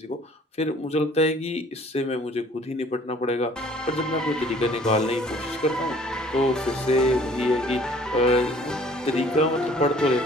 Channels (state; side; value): normal; both; correlation 0.55